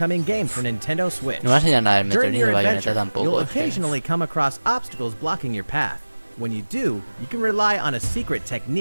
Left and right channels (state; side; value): inverted; both; correlation -1.00